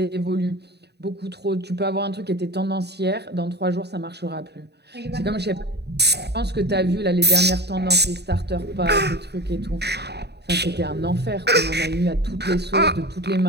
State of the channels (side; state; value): left; late; 0.48 ms